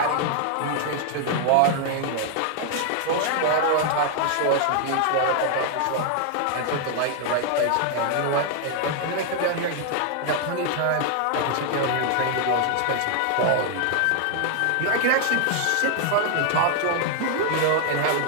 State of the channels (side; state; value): both; different; correlation 0.00